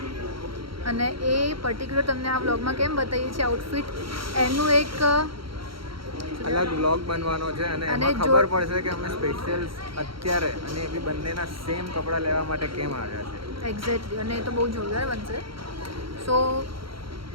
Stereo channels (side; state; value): left; late; 0.74 ms